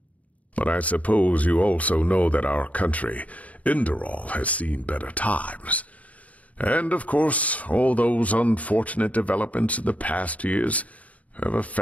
But I suppose you also know that our country, Enderal, has seen better times. And, of course, all those unfortunate developments in the past years have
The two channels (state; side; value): late; right; 0.068 ms